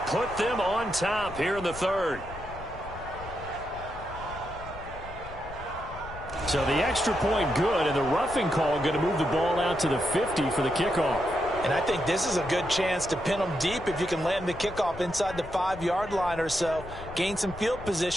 put them on top here in the third. So the extra point good, and the roughing call going to move the ball out to the 50 for the kickoff. And I think this is a good chance to pin them deep if you can land the kickoff inside the 5-yard line or so. Gain some field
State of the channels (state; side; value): noise; left; rumble, 14 dB below the sound